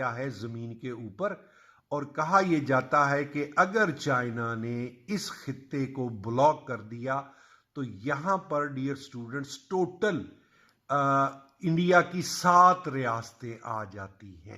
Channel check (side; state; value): both; identical; correlation 1.00